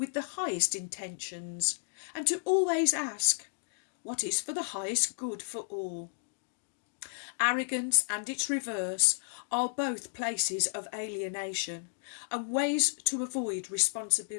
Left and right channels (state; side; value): silent; right; digital silence